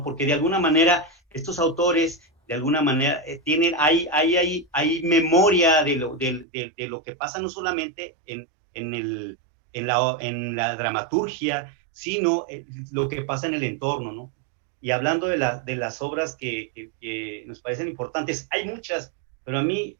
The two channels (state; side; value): drops out; left; at 6.5 s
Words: Porque de alguna manera estos autores, de alguna manera, hay memoria de lo que pasa no solamente en la dramaturgia, sino lo que pasa en el entorno, ¿no? Y hablando de las obras que nos parecen importantes, hay muchas, pero a mí